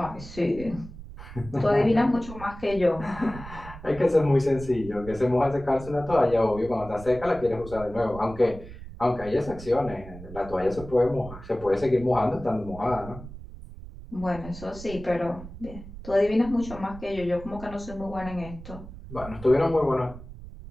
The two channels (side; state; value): right; noise; rumble, 14 dB below the sound